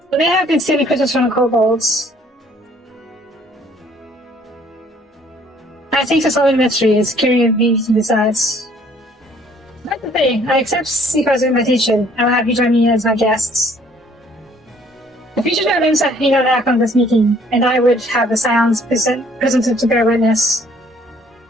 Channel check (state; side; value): normal; both; correlation 0.60